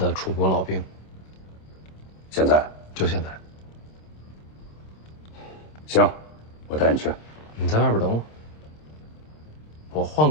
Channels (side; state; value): right; late; 26 ms